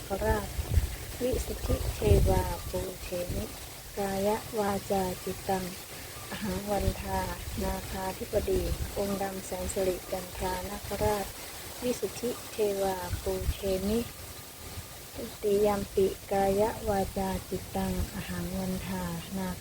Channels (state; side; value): identical; both; correlation 1.00